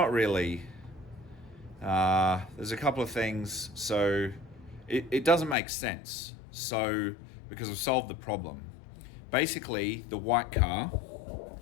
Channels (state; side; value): drops out; right; at 5.6 s